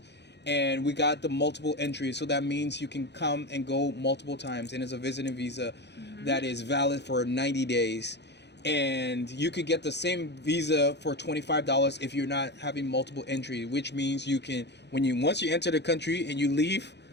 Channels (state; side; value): late; right; 0.50 ms